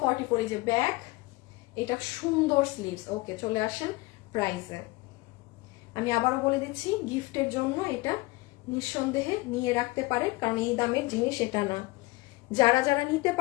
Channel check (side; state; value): right; quieter; 21.8 dB